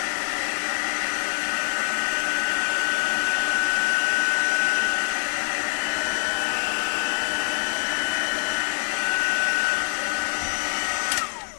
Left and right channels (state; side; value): silent; right; digital silence